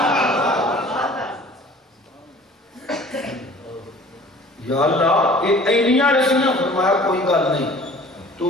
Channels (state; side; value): normal; both; correlation 0.48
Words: یا اللہ یہ اینیاں رسیاں فرمایا کوئی گل نہیں تو